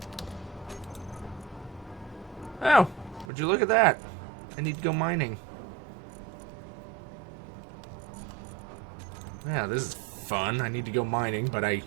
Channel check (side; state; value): left; drops out; at 3.2 s